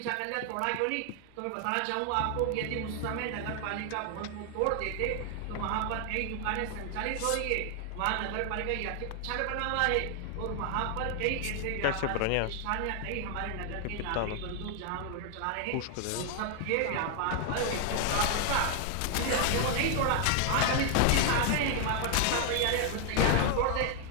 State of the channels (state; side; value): different; both; correlation 0.00